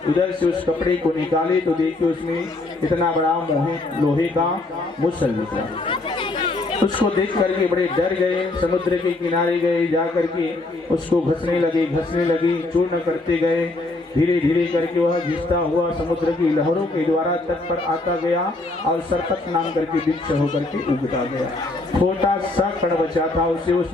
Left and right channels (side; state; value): right; quieter; 3.1 dB